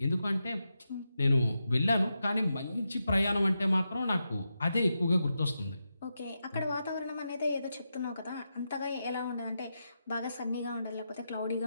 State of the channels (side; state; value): both; inverted; correlation -0.87